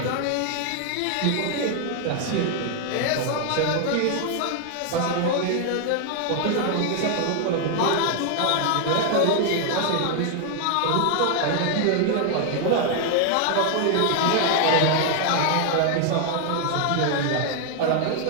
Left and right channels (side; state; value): both; different; correlation 0.00